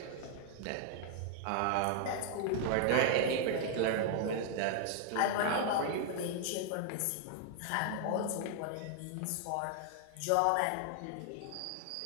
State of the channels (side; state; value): both; different; correlation 0.00